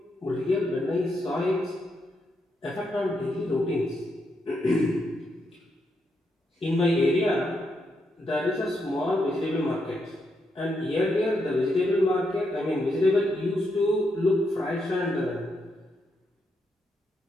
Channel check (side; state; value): both; normal; correlation 0.80